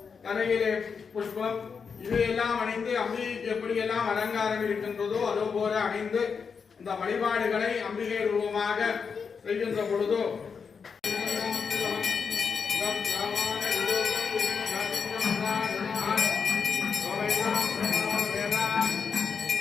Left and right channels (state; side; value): quieter; right; 5.9 dB